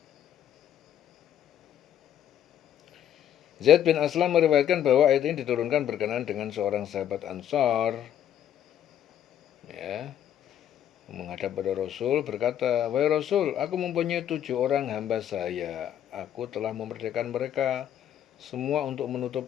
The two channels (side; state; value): right; quieter; 10.3 dB